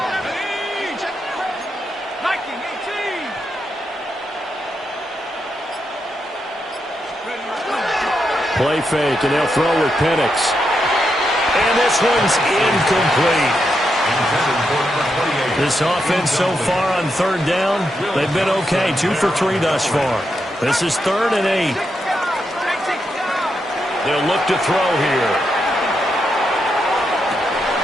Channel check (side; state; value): both; normal; correlation 0.83